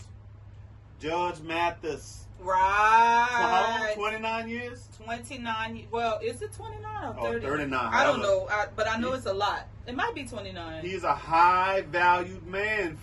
Judge Mathis. Right. How long? 29 years? 29. Well, is it 29 or 30? 39. I don't know, but I know it's a lot. It might be 29. He's a high valued man,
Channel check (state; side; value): identical; both; correlation 1.00